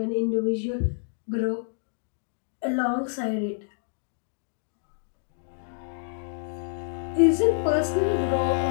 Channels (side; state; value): right; silent; digital silence